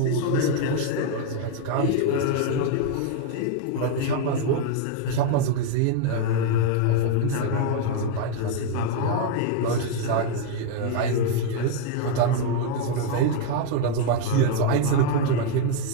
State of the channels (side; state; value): both; different; correlation 0.00